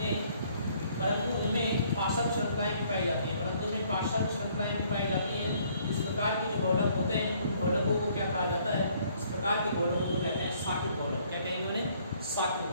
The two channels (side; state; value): both; inverted; correlation -0.63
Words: परंतु उनमें पार्श्व श्रृंखलाएं भी पाई जाती हैं। इस प्रकार के जो बहुलक होते हैं उन बहुलकों को क्या कहा जाता है? इस प्रकार के बहुलकों को कहते हैं शाखित बहुलक। क्या कहेंगे उन्हें? शाखित